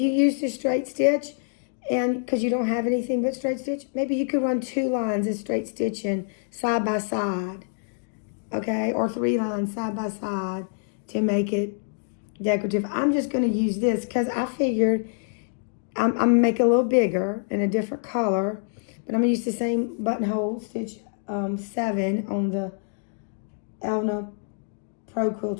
use the straight stitch, and because you don't have anything but straight stitch, maybe you could run 2 lines of straight stitching side by side, okay? Or 3 lines side by side to make it decorative. I'm just going to use this because I figured I'm going to make it a little bigger in a different color, but I'm going to use the same buttonhole stitch 7 on the Elna Pro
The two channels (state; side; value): silent; right; 61 dB below the other